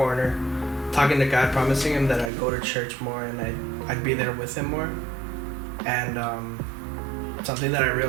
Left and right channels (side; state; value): left; drops out; at 2.3 s